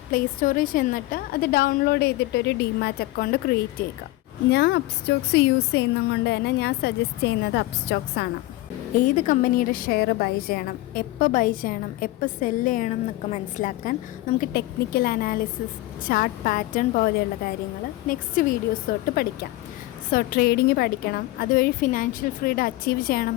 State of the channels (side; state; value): right; quieter; 18.0 dB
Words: പ്ലേ സ്റ്റോറിൽ ചെന്നിട്ട് അത് ഡൗൺലോഡ് ചെയ്തിട്ടൊരു ഡിമാറ്റ് അക്കൗണ്ട് ക്രിയേറ്റ് ചെയ്യുക. ഞാൻ അപ്സ്റ്റോക്സ് യൂസ് ചെയ്യുന്നത് കൊണ്ട് തന്നെ ഞാൻ സജസ്റ്റ് ചെയ്യുന്നത് അപ്സ്റ്റോക്സ് ആണ്. ഏത് കമ്പനിയുടെ ഷെയർ ബൈ ചെയ്യണം, എപ്പോൾ ബൈ ചെയ്യണം, എപ്പോൾ സെല്ല് ചെയ്യണം എന്നൊക്കെ മനസ്സിലാക്കാൻ നമുക്ക് ടെക്നിക്കൽ അനാലിസിസ്, ചാർട്ട് പാറ്റേൺ പോലെയുള്ള കാര്യങ്ങൾ നെക്സ്റ്റ് വീഡിയോസ് തൊട്ട് പഠിക്കാം. സോ ട്രേഡിങ് പഠിക്കണം, അതുവഴി ഫിനാൻഷ്യൽ ഫ്രീഡം അച്ചീവ് ചെയ്യണം